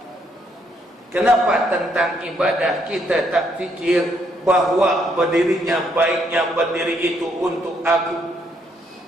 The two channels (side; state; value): both; normal; correlation 0.72